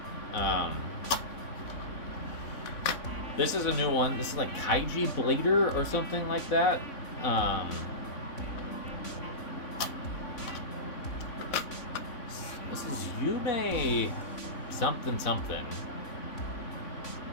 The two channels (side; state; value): right; late; 3.5 ms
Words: This is a new one. This is like Kaiji Blader or something like that. This is Yume something something.